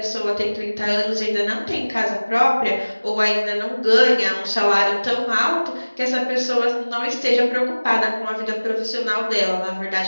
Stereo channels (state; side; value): inverted; both; correlation -1.00